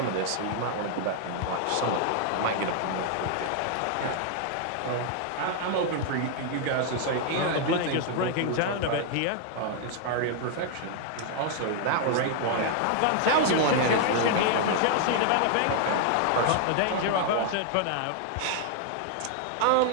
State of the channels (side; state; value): both; different; correlation 0.00